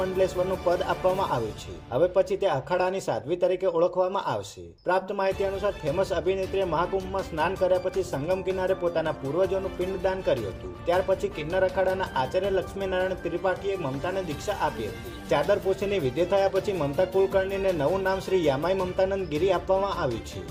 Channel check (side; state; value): both; identical; correlation 1.00